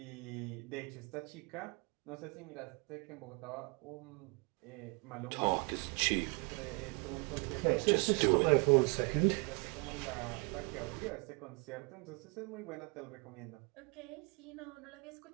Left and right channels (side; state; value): left; quieter; 32.4 dB